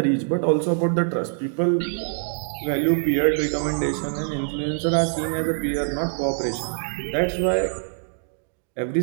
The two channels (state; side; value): silent; left; 62 dB below the other